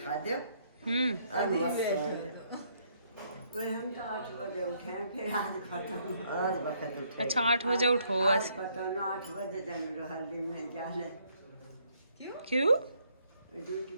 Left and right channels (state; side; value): inverted; both; correlation -0.70